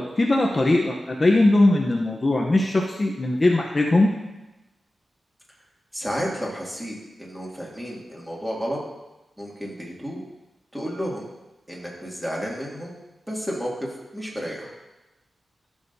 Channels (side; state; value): both; normal; correlation 0.95